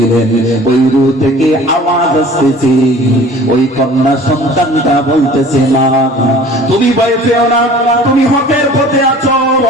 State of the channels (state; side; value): normal; both; correlation 0.47